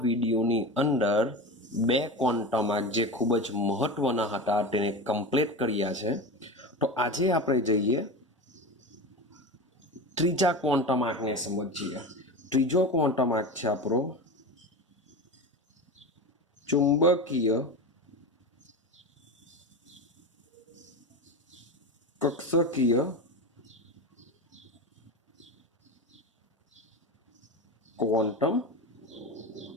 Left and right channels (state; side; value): normal; both; correlation 0.25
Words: વિડીયોની અંદર બે ક્વોન્ટમ આંક જે ખૂબ જ મહત્વના હતા તેને કમ્પ્લીટ કર્યા છે. તો આજે આપણે જઈએ ત્રીજા ક્વોન્ટમ આંકને સમજીએ. ત્રીજો ક્વોન્ટમ આંક છે આપણો ચુંબકીય કક્ષકીય ક્વોન્ટમ